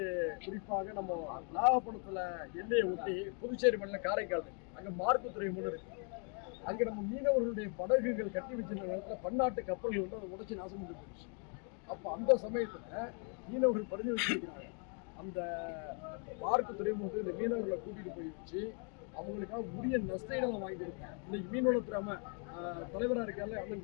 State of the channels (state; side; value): quieter; right; 39.7 dB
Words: குறிப்பாக நம்ம நாகப்பட்டினத்தில் எல்லையை ஒட்டி புதுச்சேரி மாநிலம் காரைக்கால் இருக்கு, அங்கே மார்க்கு துறைமுகம் இருக்கு. அங்கே நம்ம மீனவர்களுடைய படகுகள் கட்டி வச்சிருந்த நேரத்தில் பன்னாட்டு கப்பல்கள் அதை உடைச்சி நாசம் பண்ணி போயிடுச்சு. அப்போ அந்த சமயத்தில் மீனவர்கள் பரிந்து வச்சிருக்கிறாங்க, அந்த பார்க்கு துறைமுகத்துக்கு இந்த மீனவர்களை கூட்டிகிட்டு போய் வச்சு அவங்களுக்காக உரிய நஷ்டங்களை வாங்கி கொடுப்பேன். இன்னைக்கு மீனவளத்துறை தலைவராக இருக்கால